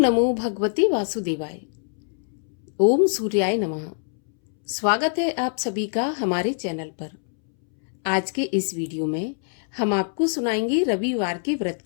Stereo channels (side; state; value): right; silent; 62 dB below the other